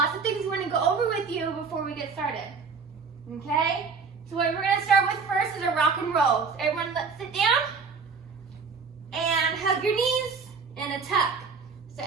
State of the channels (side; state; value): left; quieter; 5.2 dB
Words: of things we want to go over with you before we get started. Okay? So what we're going to start with first is a rock and roll. So everyone let's sit down and hug your knees and a tuck. So